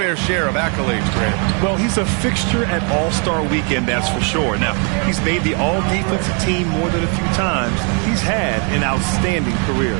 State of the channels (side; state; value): left; quieter; 37.9 dB